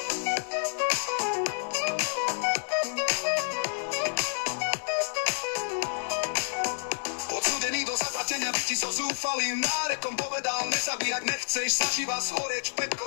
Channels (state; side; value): silent; right; digital silence